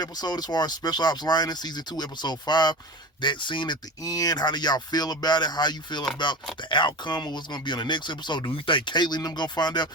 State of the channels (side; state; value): both; normal; correlation 0.30